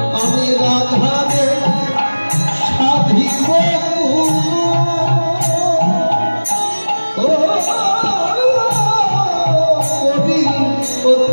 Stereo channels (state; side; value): inverted; both; correlation -1.00